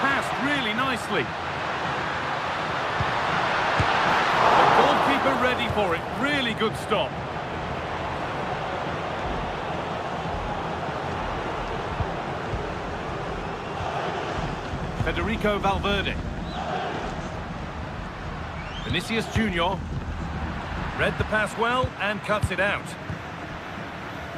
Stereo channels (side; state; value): both; identical; correlation 1.00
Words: really nicely. Goalkeeper ready for it. Really good stop. Federico Valverde. Vinicius Junior. Read the pass well and cuts it out.